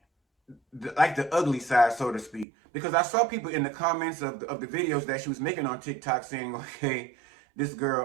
like the ugly side, so to speak. Because I saw people in the comments of the videos that she was making on TikTok saying, okay, this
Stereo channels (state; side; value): drops out; left; at 2.5 s